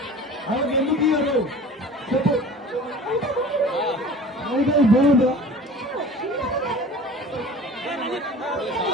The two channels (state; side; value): normal; both; correlation 0.41